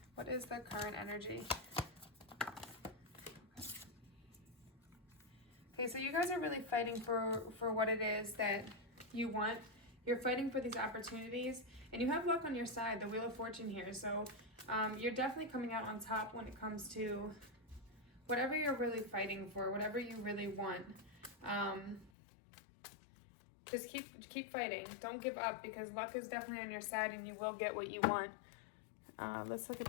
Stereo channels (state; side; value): drops out; right; at 22.1 s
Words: What is the current energy? Okay, so you guys are really fighting for what it is that you want. You're fighting for these opportunities, and you have luck on your side, the Wheel of Fortune here. So you're definitely coming out on top when it comes to whatever you're really fighting for, whatever you really want. Just keep fighting. Don't give up, because luck is definitely on your side and you will get what you want. Let's look at